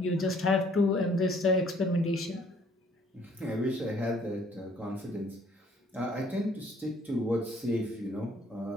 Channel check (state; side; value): normal; both; correlation 0.61